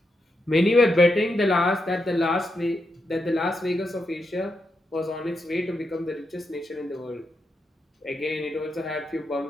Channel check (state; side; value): normal; both; correlation 0.84